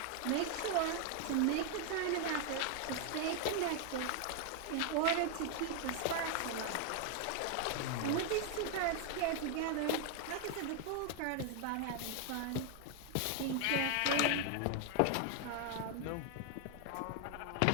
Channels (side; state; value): both; different; correlation 0.00